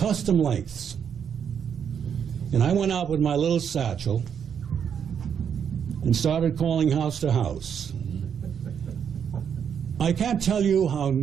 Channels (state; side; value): quieter; left; 7.8 dB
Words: lengths. And I went out with my little satchel and started calling house to house. I can't tell you how